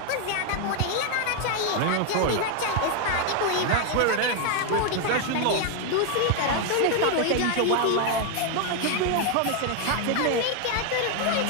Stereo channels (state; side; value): different; both; correlation 0.01